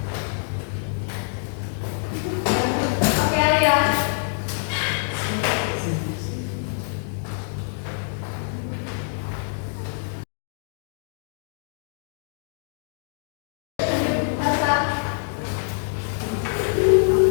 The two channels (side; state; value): right; silent; 62 dB below the other